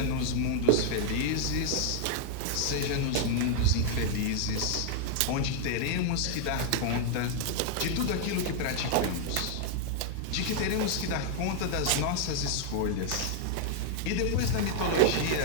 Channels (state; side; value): different; both; correlation 0.00